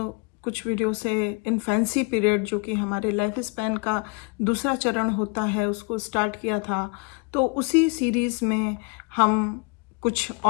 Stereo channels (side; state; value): right; quieter; 31.9 dB